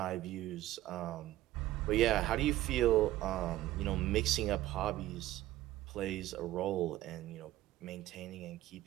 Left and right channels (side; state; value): left; quieter; 15.3 dB